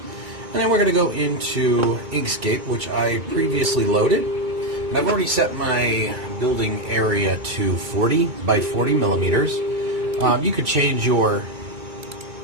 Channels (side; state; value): left; late; 2.3 ms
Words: then we're going to go into Inkscape, which I previously loaded. And I've already set my building area to 40 by 40 millimeters. You could change your